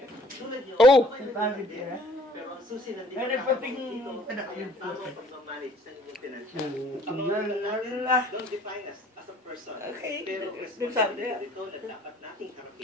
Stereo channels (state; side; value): normal; both; correlation 0.56